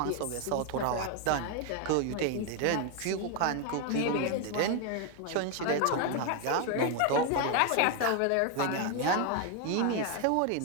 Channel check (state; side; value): different; both; correlation 0.01